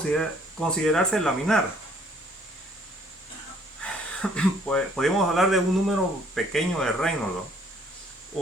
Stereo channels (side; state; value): both; normal; correlation 0.61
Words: considerarse laminar. Podemos hablar de un número pequeño de Reynolds, ¿no?